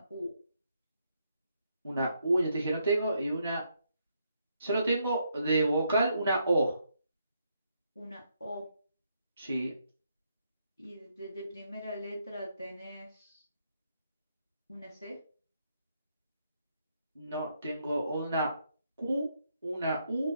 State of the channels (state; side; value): inverted; both; correlation -0.76